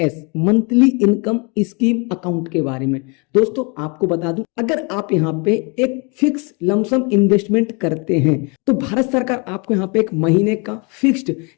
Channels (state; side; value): quieter; right; 31.5 dB